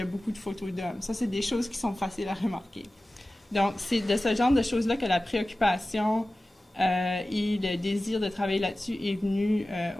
beaucoup de photos d'hommes. Ça, c'est des choses qui sont faciles à remarquer. Donc, c'est de ce genre de choses-là que la préoccupation et le désir de travailler là-dessus est venu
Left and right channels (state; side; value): normal; both; correlation 0.96